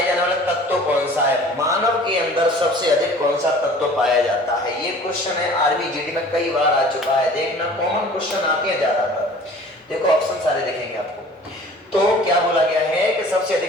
जाने वाला तत्व कौन सा है? मानव के अंदर सबसे अधिक कौन सा तत्व पाया जाता है? ये क्वेश्चन है आर्मी जीडी में कई बार आ चुका है। देखना कॉमन क्वेश्चन आते हैं ज्यादातर। देखो ऑप्शन सारे देखेंगे आपको। तो क्या बोला गया है कि सबसे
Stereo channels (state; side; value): normal; both; correlation 0.47